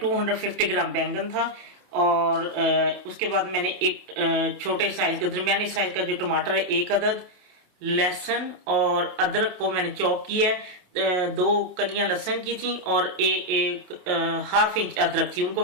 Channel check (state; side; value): late; left; 28 ms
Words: ग्राम बैंगन था। और उसके बाद मैंने एक छोटे साइज का दरमियानी साइज का जो टमाटर है, एक अदद लहसुन और अदरक को मैंने चॉप किया है। 2 कलियां लहसुन की थी और एक हाफ इंच अदरक थी, उनको